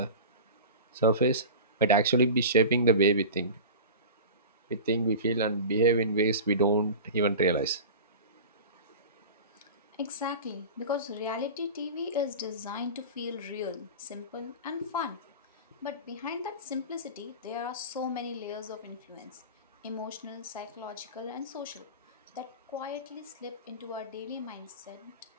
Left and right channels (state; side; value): inverted; both; correlation -0.32